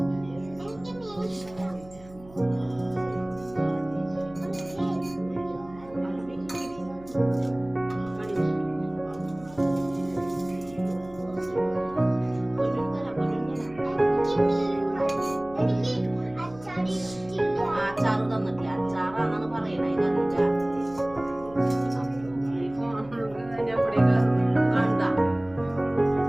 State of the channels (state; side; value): noise; right; hum, 22 dB below the sound